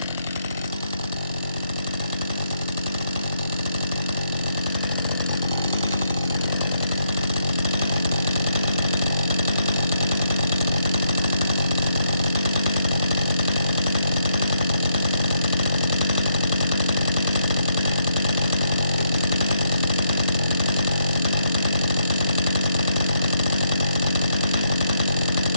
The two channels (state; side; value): inverted; both; correlation -0.76